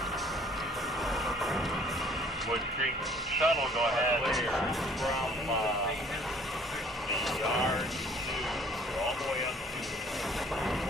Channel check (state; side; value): normal; both; correlation 0.56